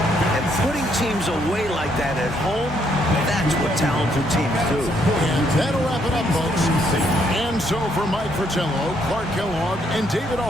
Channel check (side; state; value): both; normal; correlation 0.72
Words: And putting teams away like that at home, that's what talented teams do. And that'll wrap it up, folks. And so for Mike Fratello, Clark Kellogg, and David